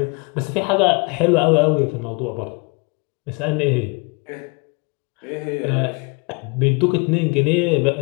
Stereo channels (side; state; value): right; quieter; 30.7 dB